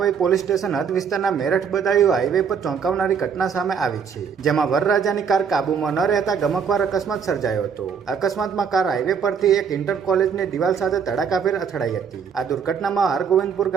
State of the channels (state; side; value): quieter; left; 6.7 dB